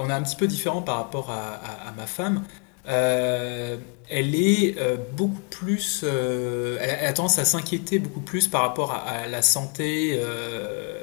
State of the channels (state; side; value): quieter; right; 39.5 dB